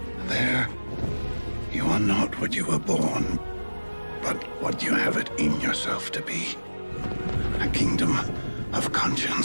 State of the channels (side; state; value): both; inverted; correlation -1.00